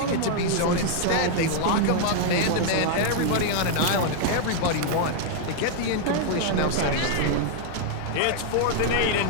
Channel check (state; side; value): different; both; correlation -0.01